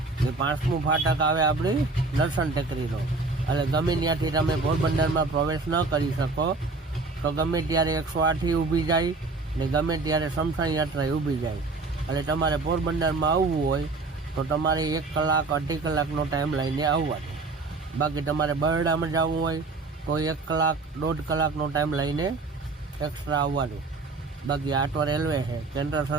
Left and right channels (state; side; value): quieter; left; 3.7 dB